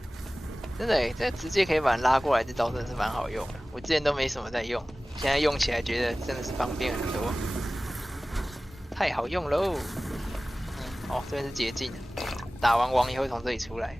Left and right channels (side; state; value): both; normal; correlation 0.97